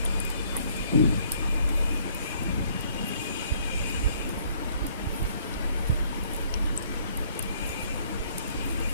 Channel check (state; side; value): inverted; both; correlation -0.62